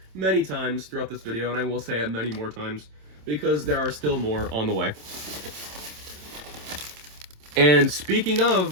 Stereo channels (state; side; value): late; left; 27 ms